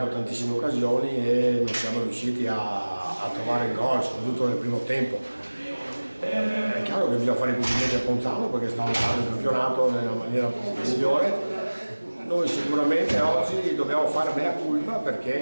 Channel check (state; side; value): inverted; both; correlation -1.00